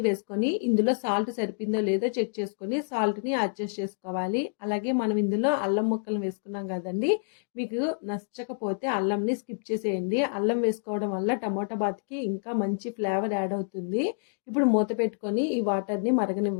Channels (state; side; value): silent; right; digital silence